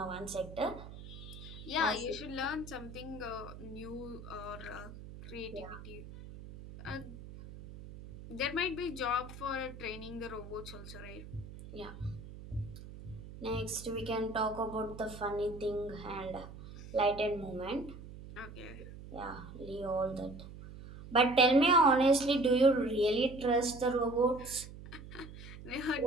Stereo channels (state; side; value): noise; right; hum, 14 dB below the sound